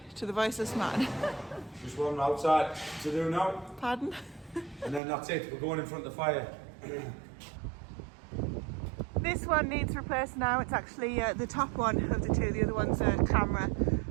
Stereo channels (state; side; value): drops out; left; at 5.0 s